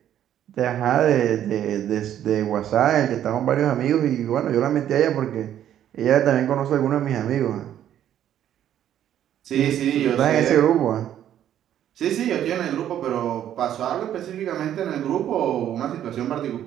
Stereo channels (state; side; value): quieter; left; 10.9 dB